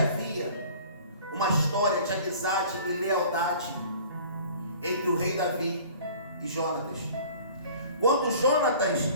uma história de amizade e lealdade entre o rei Davi e Jonatas. Quando Jonatas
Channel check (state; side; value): inverted; both; correlation -0.48